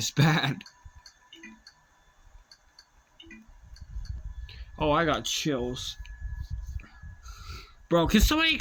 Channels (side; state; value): both; identical; correlation 1.00